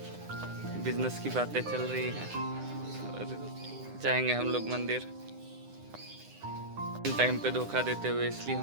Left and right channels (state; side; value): late; left; 9.9 ms